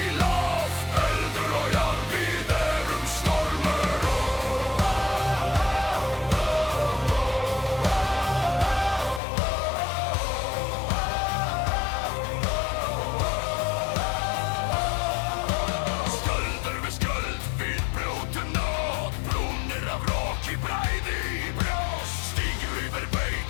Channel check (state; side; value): drops out; right; at 9.2 s